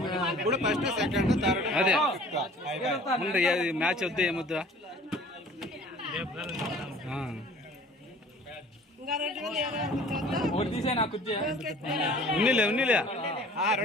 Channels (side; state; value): both; normal; correlation 0.49